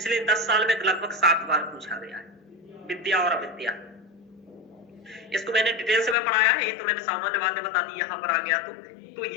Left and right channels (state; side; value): drops out; right; at 6.2 s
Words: 10 साल में लगभग 7 बार पूछा गया है, विद्या और अविद्या। इसको मैंने डिटेल से में पढ़ाया है, ये तो मैंने सामान्य बातें बता दी, यहाँ पर आ गया तो